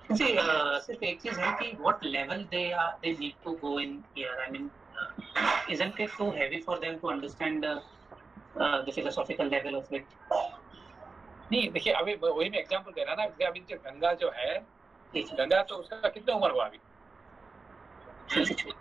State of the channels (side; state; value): left; quieter; 4.1 dB